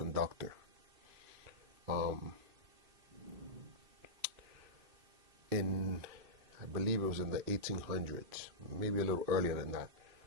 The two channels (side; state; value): left; late; 2.6 ms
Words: I believe it was in the 1800s, maybe a little earlier than that,